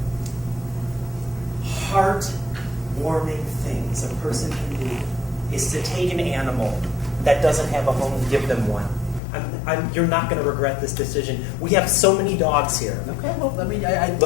heart-warming things a person can do is to take an animal that doesn't have a home and give them one. You're not going to regret this decision. We have so many dogs here. Okay, well, I mean,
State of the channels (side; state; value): right; drops out; at 9.2 s